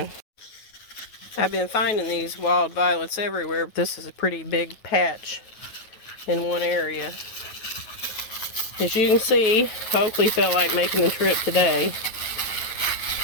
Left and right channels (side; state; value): right; late; 9.3 ms